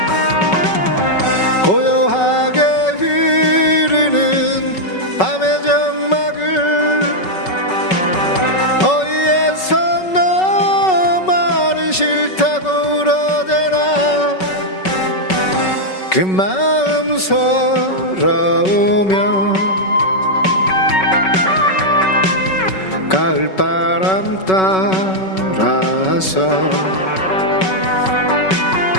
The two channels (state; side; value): late; right; 5.3 ms